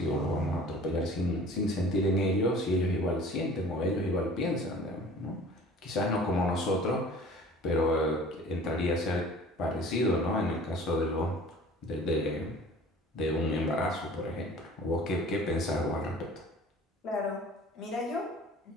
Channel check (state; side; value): normal; both; correlation 0.46